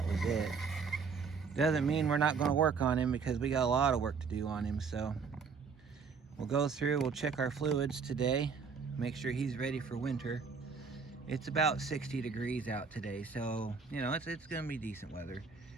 was it. Doesn't mean we're not going to work on him, because we got a lot of work to do on him. So we'll go through, we'll check our fluids today, make sure he's ready for winter. It's about 60 degrees out today, so you know it's going to be decent weather.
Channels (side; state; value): left; quieter; 5.5 dB